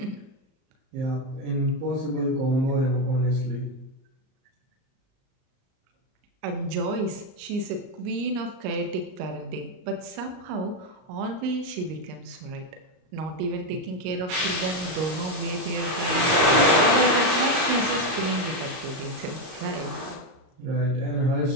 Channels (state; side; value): late; left; 38 ms